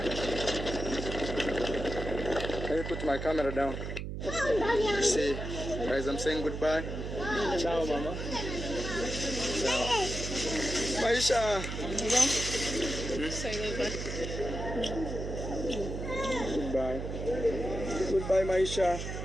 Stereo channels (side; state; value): right; noise; hum, 5 dB below the sound